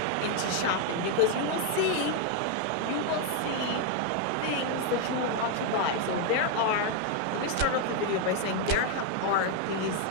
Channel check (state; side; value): different; both; correlation 0.00